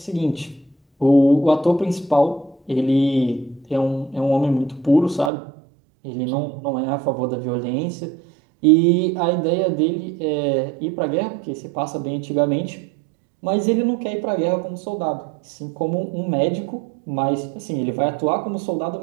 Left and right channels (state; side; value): drops out; left; at 5.3 s